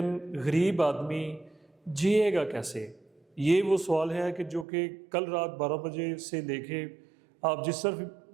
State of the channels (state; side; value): drops out; left; at 4.7 s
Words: غریب آدمی جیے گا کیسے؟ یہ وہ سوال ہے جو کہ کل رات 12 بجے سے لے کے آپ جس طرف